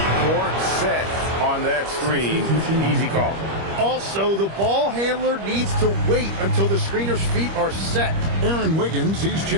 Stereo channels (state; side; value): late; left; 25 ms